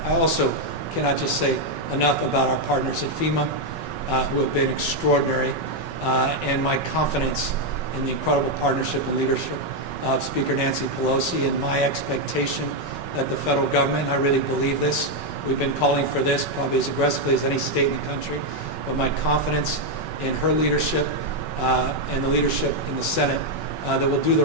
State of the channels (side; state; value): right; late; 5.3 ms